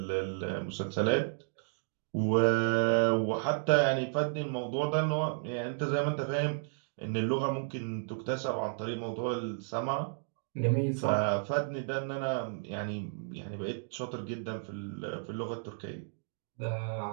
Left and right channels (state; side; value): silent; left; digital silence